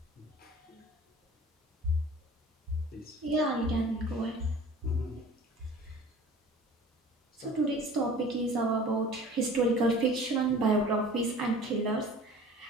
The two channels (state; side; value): normal; both; correlation 0.44